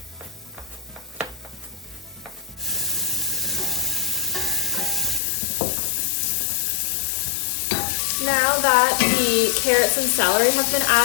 Now that the carrots and celery have been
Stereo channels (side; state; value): right; drops out; at 5.2 s